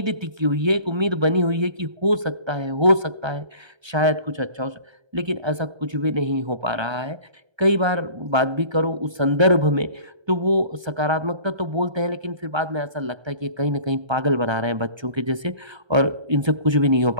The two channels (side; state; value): left; late; 1.3 ms